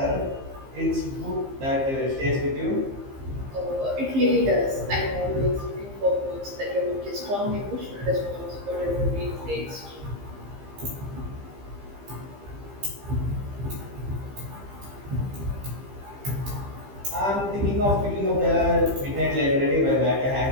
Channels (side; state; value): left; late; 15 ms